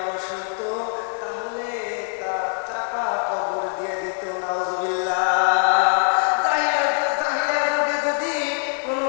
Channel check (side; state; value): right; silent; 63 dB below the other